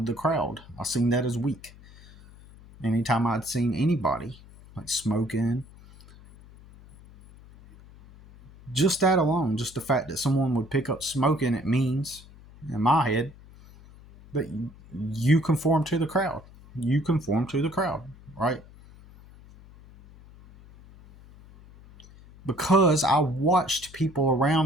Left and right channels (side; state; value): left; noise; hum, 22 dB below the sound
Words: the crowd. I seen that as weak. Anytime I'd seen anybody like smoking, just that alone, just the fact that someone would pick up smoking, it means in my head that you conform to the crowd. You conform to the crowd, right? Because I watched people